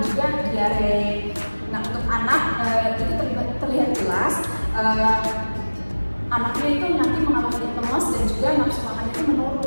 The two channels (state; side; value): inverted; both; correlation -1.00